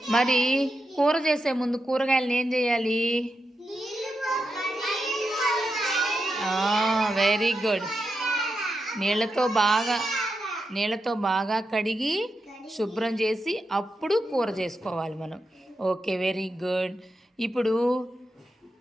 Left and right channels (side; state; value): both; normal; correlation 0.87